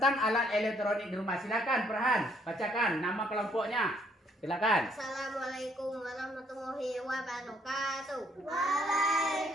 alat elektronik di rumah. Silakan, Farhan, bacakan nama kelompoknya. Silakan. Assalamualaikum warahmatullahi wabarakatuh.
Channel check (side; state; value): both; normal; correlation 0.67